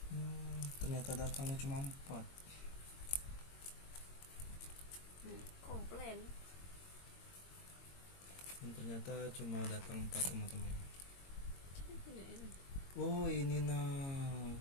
Ternyata datangnya cuma 4. Komplain. Ternyata cuma datang 4 teman-teman. Jadi punya ini. Oh, ini nah.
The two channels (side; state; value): right; late; 22 ms